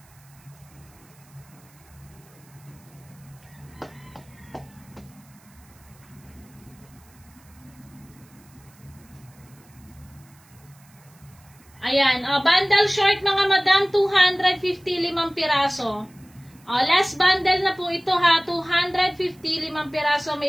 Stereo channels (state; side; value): noise; right; hiss, 28 dB below the sound